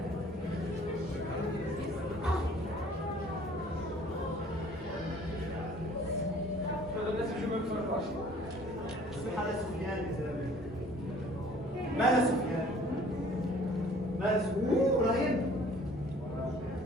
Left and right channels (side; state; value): both; normal; correlation 0.54